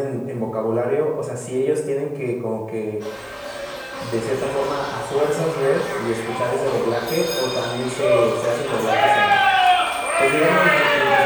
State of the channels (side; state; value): both; identical; correlation 1.00